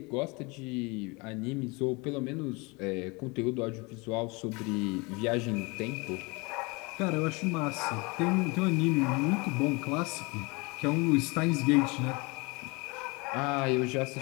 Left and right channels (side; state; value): right; quieter; 27.4 dB